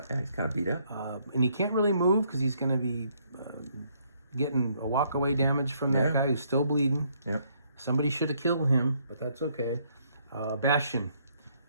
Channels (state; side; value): inverted; both; correlation -0.70